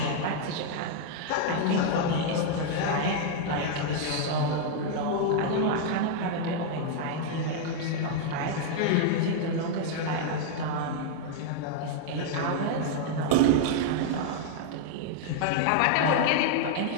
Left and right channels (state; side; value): different; both; correlation -0.01